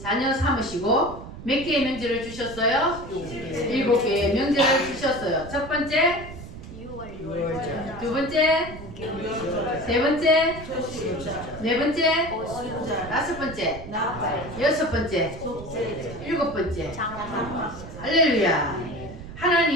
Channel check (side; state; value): right; noise; rumble, 13 dB below the sound